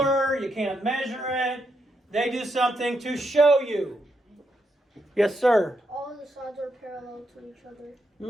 you can't measure it. They do something to show you. Yes, sir? All the sides are parallel to each other.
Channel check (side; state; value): both; normal; correlation 0.81